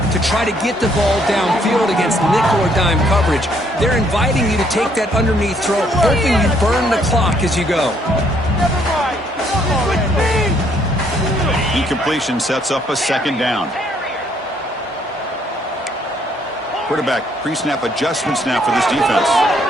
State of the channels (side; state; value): both; normal; correlation 0.67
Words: to try to get the ball downfield against nickel or dime coverage. They're inviting you to take that underneath throw, hoping you burn the clock as you go. Incompletion sets up a second down. Quarterback pre-snap adjustments now for this defense.